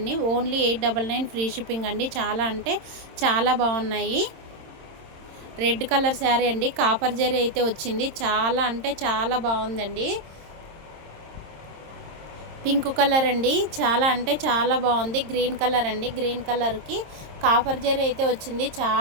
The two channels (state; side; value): late; left; 26 ms